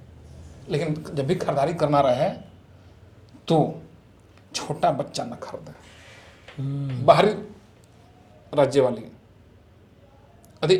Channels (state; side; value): identical; both; correlation 1.00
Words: लेकिन जब भी खरीदारी करना रहे तो छोटा बच्चा न खरीदें, बाहरी राज्य वाली।